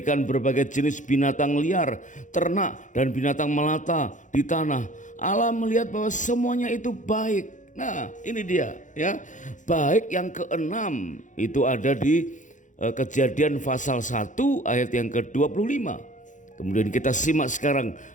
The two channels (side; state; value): right; late; 0.36 ms